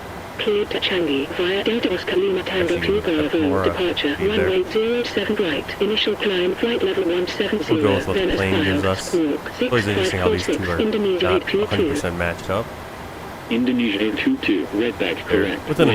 Cleared to Changi, via Delta Oscar Lima Tango 2 Bravo, departure, runway 07 right, initial climb, flight level 170, We'll go with what then the as plane gives filed, us. squawk, It's always interesting how these two 6546, are Indonesia not 822. 100% matched up. Indonesia 822, redback correct. Within a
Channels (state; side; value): identical; both; correlation 1.00